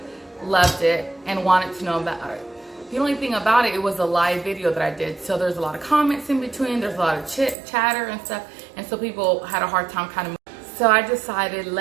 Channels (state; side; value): drops out; left; at 7.6 s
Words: loved it and wanted to know about it. The only thing about it, it was a live video that I did, so there's a lot of comments in between, there's a lot of chatter and stuff, and so people had a hard time kind of. So I decided,